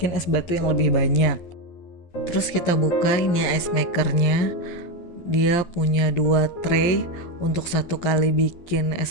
es batu yang lebih banyak. Terus kita buka ini ice makernya. Dia punya 2 tray untuk 1 kali bikin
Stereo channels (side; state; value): right; late; 11 ms